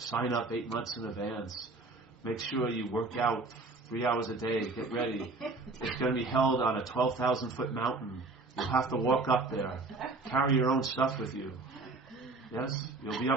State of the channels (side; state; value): left; quieter; 3.5 dB